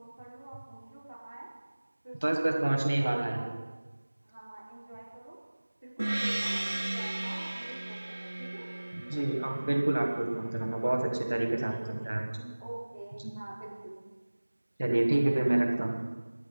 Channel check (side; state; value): both; inverted; correlation -1.00